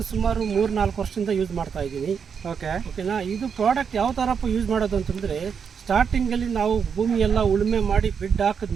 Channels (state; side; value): quieter; left; 6.7 dB